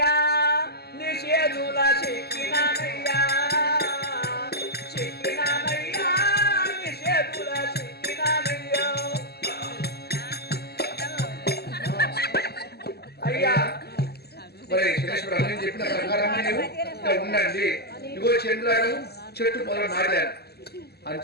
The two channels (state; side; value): late; right; 0.46 ms